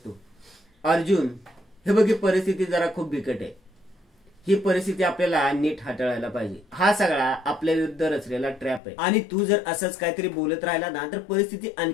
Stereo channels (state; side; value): drops out; right; at 8.8 s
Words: अर्जुन हे बघ, परिस्थिती जरा खूप बिकट आहे, ही परिस्थिती आपल्याला नीट हाताळायला पाहिजे, हा सगळा आपल्या विरुद्ध रचलेला ट्रॅप आहे आणि तू जर असंच काहीतरी बोलत राहिला ना तर परिस्थिती